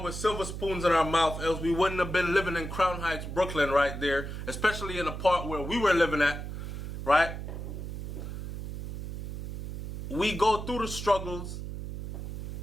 with silver spoons in our mouth, else we wouldn't have been living in Crown Heights, Brooklyn right there, especially in the part where we were living at, right? We go through the struggles,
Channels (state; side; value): noise; right; hum, 6 dB below the sound